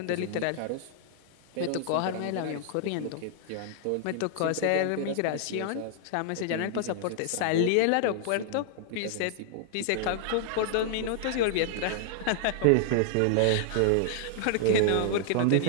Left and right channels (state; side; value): different; both; correlation 0.00